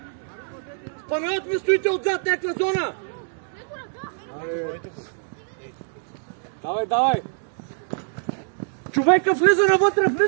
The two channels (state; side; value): silent; left; 62 dB below the other